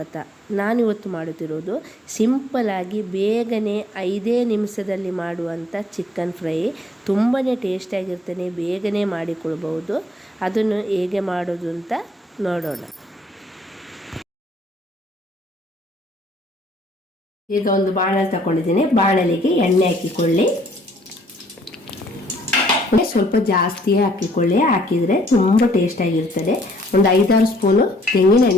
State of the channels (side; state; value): both; normal; correlation 0.64